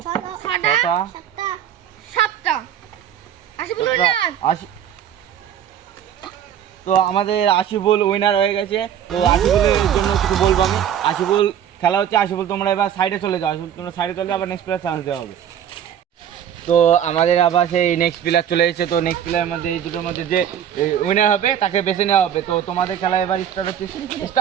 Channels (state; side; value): quieter; left; 9.6 dB